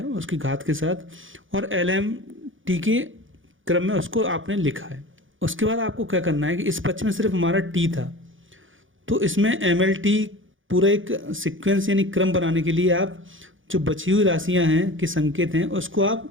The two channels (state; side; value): late; left; 0.57 ms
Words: उसकी घात के साथ, और LMT के क्रम में उसको आपने लिखा है। उसके बाद आपको क्या करना है कि इस पक्ष में सिर्फ हमारा t था, तो इसमें MLT पूरा एक सीक्वेंस यानी क्रम बनाने के लिए आप जो बची हुई राशियां हैं कि संकेत हैं उसको